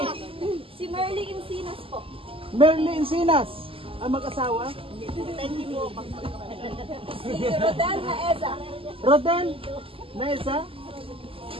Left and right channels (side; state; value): left; late; 0.26 ms